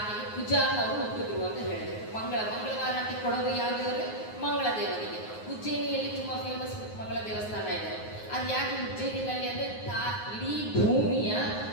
ಕುಜ ಅವರು ಹುಟ್ಟಿದ್ರು ಅಂತ ಹೇಳಿದ್ರು. ಮಂಗಳವಾರ ಅಂತ ಕೊಡೋದು ಯಾವ ದೇವರು? ಮಂಗಳ ದೇವರಿಗೆ. ಉಜ್ಜಯಿನಿಯಲ್ಲಿ ತುಂಬಾ ಫೇಮಸ್ ಮಂಗಳ ದೇವಸ್ಥಾನ ಇದೆ. ಅದು ಯಾಕೆ ಉಜ್ಜಯಿನಿನಲ್ಲಿ ಅಂದರೆ ಇಡೀ ಭೂಮಿಯ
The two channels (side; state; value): right; late; 9.5 ms